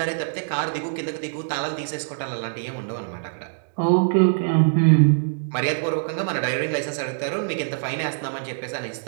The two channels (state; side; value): silent; left; digital silence